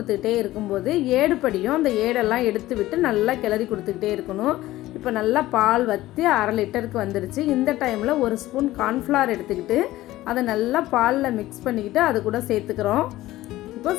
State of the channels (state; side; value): quieter; right; 16.3 dB